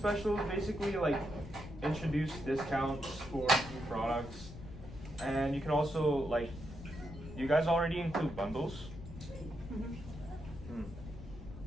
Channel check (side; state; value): left; noise; rumble, 12 dB below the sound